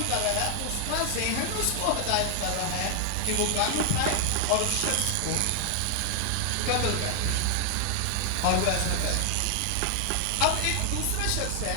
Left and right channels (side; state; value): both; different; correlation 0.00